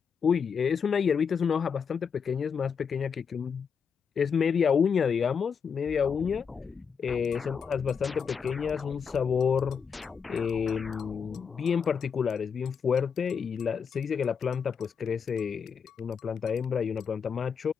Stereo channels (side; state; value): right; quieter; 6.4 dB